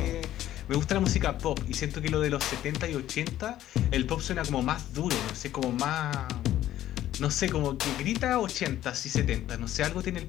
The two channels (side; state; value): right; quieter; 13.0 dB